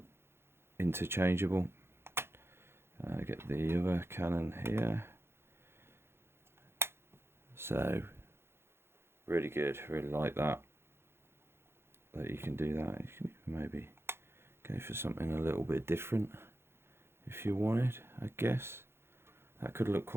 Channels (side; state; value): left; late; 0.12 ms